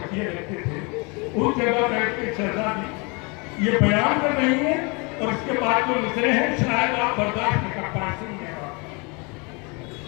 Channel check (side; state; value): right; quieter; 30.3 dB